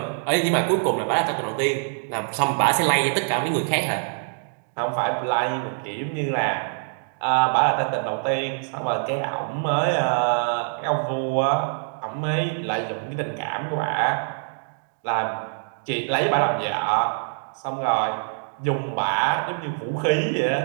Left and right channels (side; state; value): left; silent; digital silence